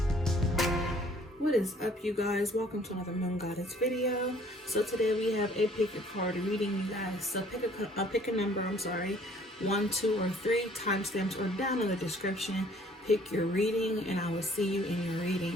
What is up, you guys? Welcome to another Moon Goddess video. So today we have a pick a card reading, you guys. So pick a number, 1, 2, or 3. Timestamps are down in the description. Pick your reading and I will see you in your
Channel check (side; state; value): both; normal; correlation 0.57